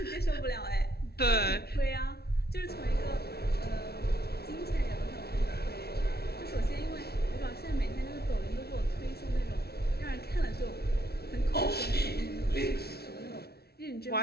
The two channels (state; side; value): late; right; 0.46 ms